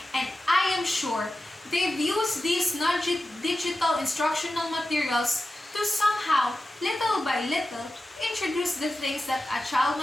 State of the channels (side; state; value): both; normal; correlation 0.93